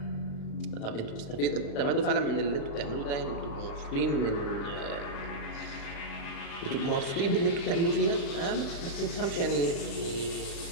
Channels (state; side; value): late; right; 36 ms